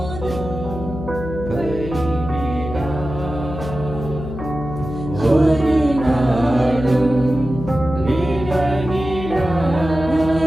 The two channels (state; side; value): noise; left; hum, 8 dB below the sound